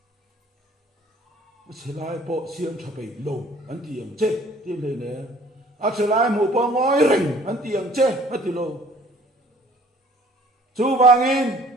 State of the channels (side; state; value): both; normal; correlation 0.54